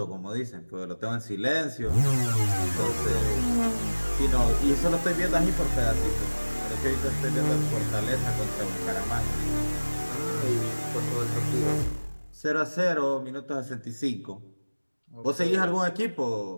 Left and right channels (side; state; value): both; inverted; correlation -1.00